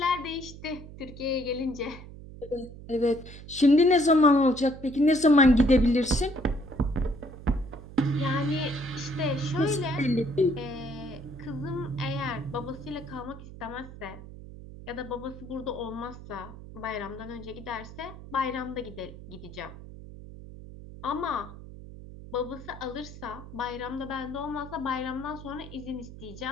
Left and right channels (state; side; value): noise; right; hum, 14 dB below the sound